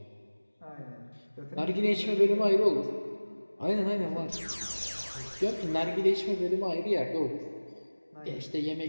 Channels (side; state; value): both; inverted; correlation -1.00